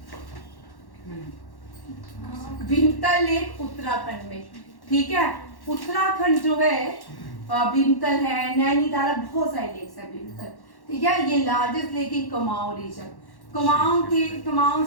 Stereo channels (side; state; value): right; late; 1.1 ms